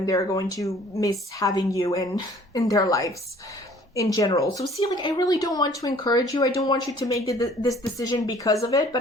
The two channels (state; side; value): normal; both; correlation 0.54